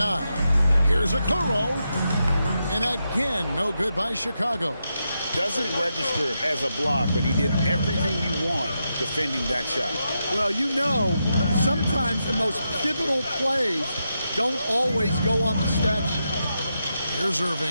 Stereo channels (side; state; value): both; inverted; correlation -0.85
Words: Here's Okoro. And again, no good by Chicago. Doesn't register as a block, but he did everything you want defending that shot. Well, you know, sometimes the most pivotal plays don't always go on the stat sheet. Here's